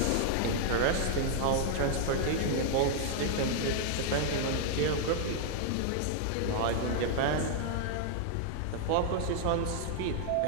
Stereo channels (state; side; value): different; both; correlation -0.01